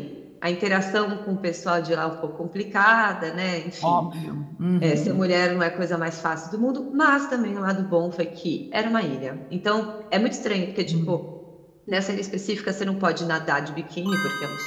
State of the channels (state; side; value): identical; both; correlation 1.00